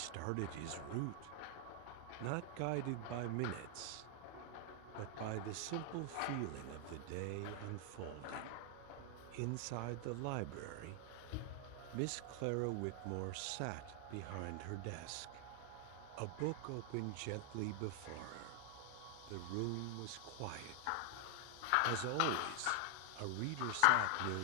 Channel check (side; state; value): both; different; correlation 0.00